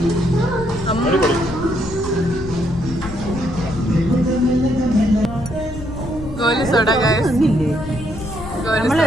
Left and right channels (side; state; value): left; noise; rumble, 12 dB below the sound